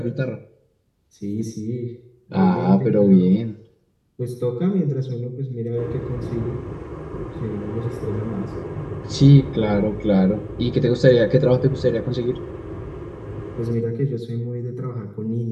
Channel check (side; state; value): both; identical; correlation 1.00